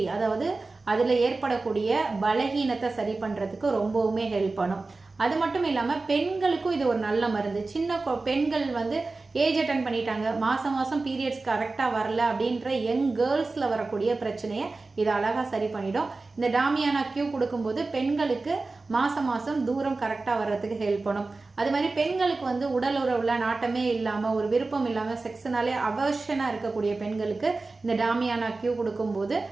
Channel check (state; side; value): quieter; left; 3.6 dB